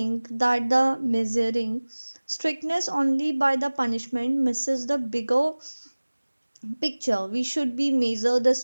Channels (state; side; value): inverted; both; correlation -1.00